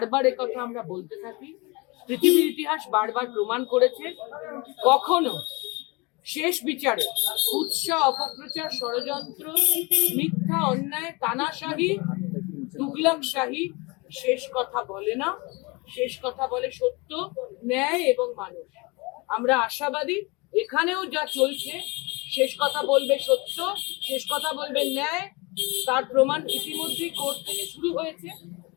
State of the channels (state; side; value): quieter; right; 26.6 dB